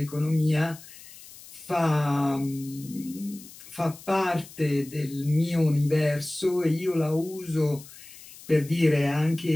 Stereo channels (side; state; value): left; noise; hiss, 19 dB below the sound